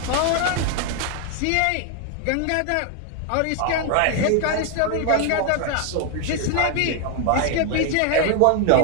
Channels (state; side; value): different; both; correlation 0.00